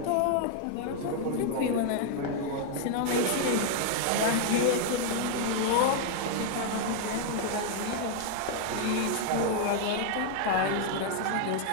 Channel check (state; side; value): different; both; correlation 0.00